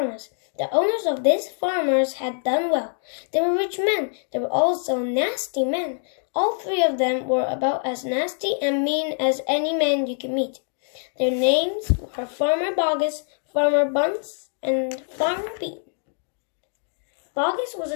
The owners of these farmers had done well. They were rich men. They were also nasty men. All 3 of them were about as nasty and mean as any man you can meet. Their names were Farmer Boggis, Farmer Bunce, and Farmer Bean. Boggis was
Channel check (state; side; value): silent; right; digital silence